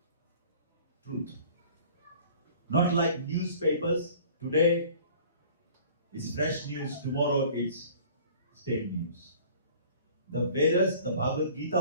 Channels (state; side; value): inverted; both; correlation -0.49